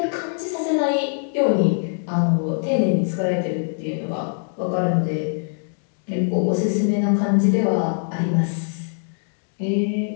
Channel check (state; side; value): silent; right; digital silence